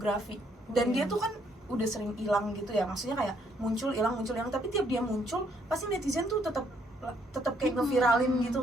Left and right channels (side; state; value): both; normal; correlation 0.69